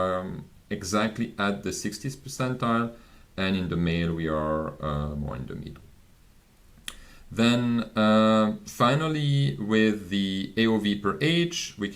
exactly at the 60th percentile, and in the male we are more in the middle. Then finally Similarly, with the AOV per age, we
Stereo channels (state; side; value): identical; both; correlation 1.00